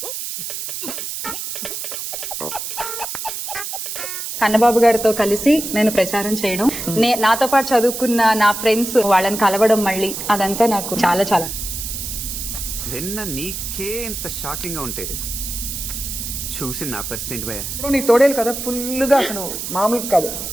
కన్నబాబు గారితో కలిసి నేను ప్రచారం చేయడం, నాతో పాటు చదువుకున్న నా ఫ్రెండ్స్ వాళ్ళని కలవడం, మళ్ళీ అదంతా నాకు చాలా చాలా. విన్న నీకే ఇంత షాకింగ్ గా ఉంటే చూసి నా పరిస్థితి ఏంటి భయ? ఇప్పుడు నీ తోడేలు కదా ఫుల్ గా అసలు మామూలు కాదు,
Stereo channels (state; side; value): noise; right; hiss, 6 dB below the sound